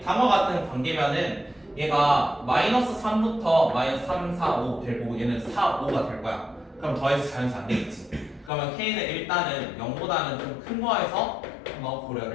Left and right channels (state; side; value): drops out; right; at 8.5 s